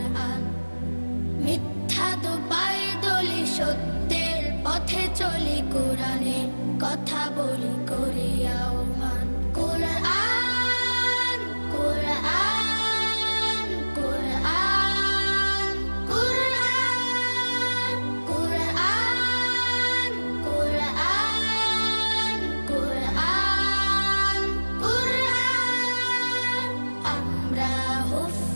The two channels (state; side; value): inverted; both; correlation -1.00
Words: মিথ্যা তো পায়ে দলি, সত্যের পথে চলি কোরআনের